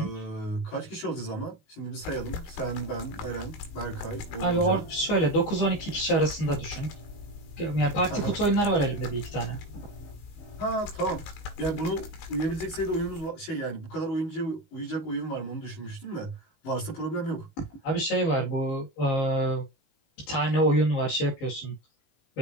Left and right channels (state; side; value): late; right; 19 ms